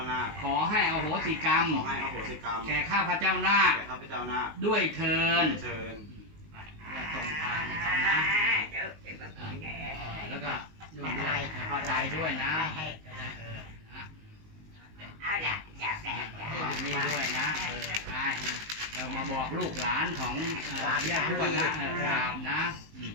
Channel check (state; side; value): late; left; 19 ms